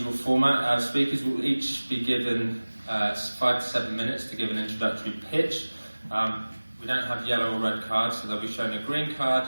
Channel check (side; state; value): both; inverted; correlation -1.00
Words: format, our speakers will each be given 5 to 7 minutes to give an introductory pitch. We don't have yellow or red cards, so they'll be shown a green card